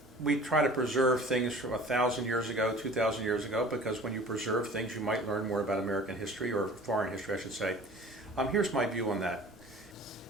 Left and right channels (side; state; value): both; normal; correlation 0.45